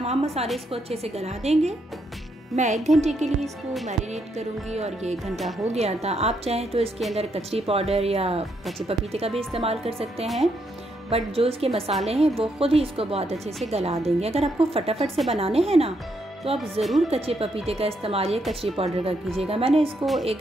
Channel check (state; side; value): normal; both; correlation 0.77